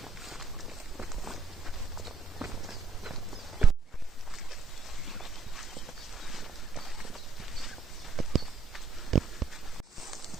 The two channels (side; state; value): left; quieter; 4.9 dB